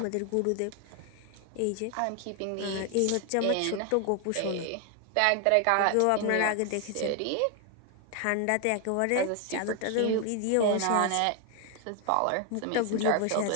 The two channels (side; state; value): both; different; correlation 0.01